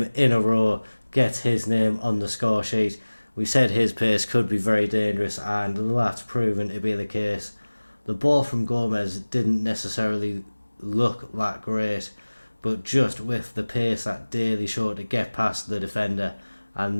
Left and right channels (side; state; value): both; inverted; correlation -1.00